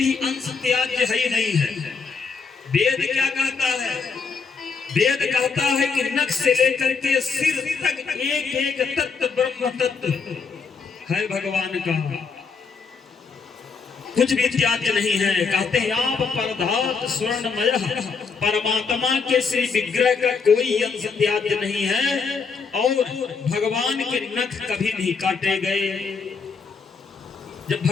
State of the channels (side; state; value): right; quieter; 5.2 dB